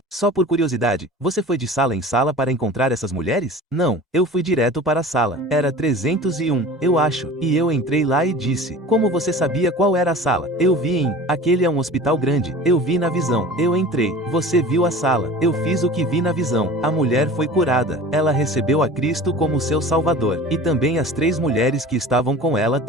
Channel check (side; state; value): both; normal; correlation 0.39